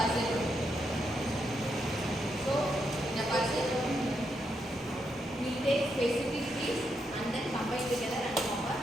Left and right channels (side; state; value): both; normal; correlation 0.81